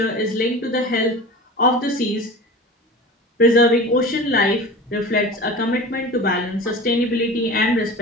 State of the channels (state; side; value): normal; both; correlation 0.34